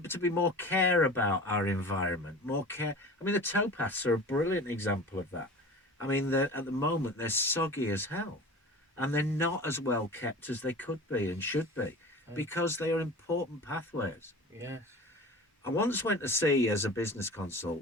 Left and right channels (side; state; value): both; normal; correlation 0.37